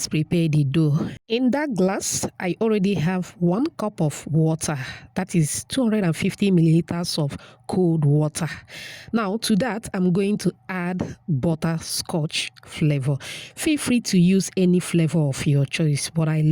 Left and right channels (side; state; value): both; identical; correlation 1.00